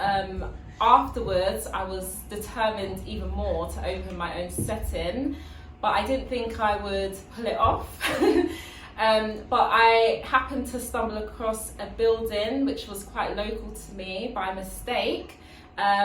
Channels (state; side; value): identical; both; correlation 1.00